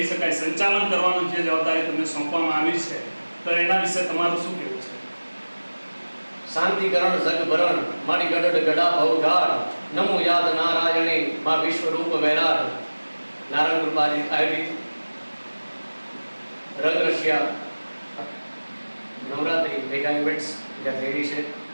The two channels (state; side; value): inverted; both; correlation -1.00